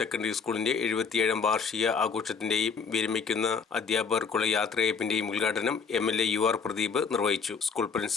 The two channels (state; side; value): quieter; right; 5.7 dB